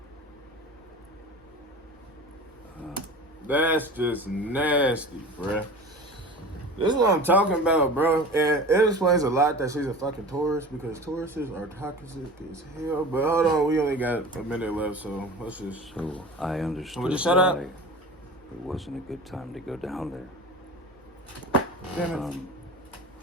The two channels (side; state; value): both; normal; correlation 0.35